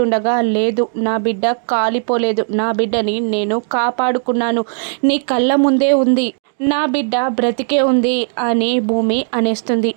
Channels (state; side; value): silent; left; 69 dB below the other